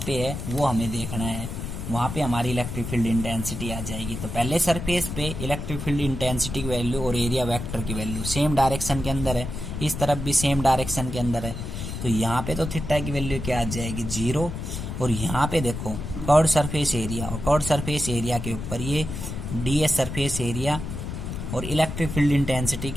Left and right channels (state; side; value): noise; left; rumble, 6 dB below the sound